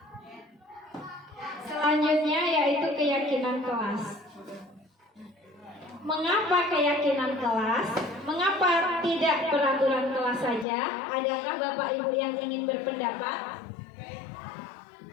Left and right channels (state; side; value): drops out; right; at 10.7 s